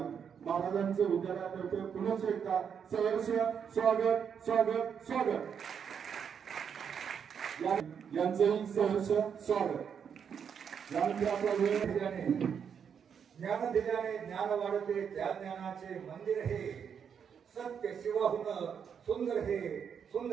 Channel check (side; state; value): left; quieter; 7.4 dB